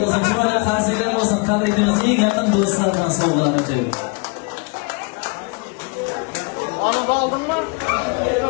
bo'lsin, chiroyli qarsaklar bo'lsin, tabriklaymiz eng yaqin do'stlar bilan sovg'alarni berib.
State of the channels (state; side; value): quieter; right; 30.4 dB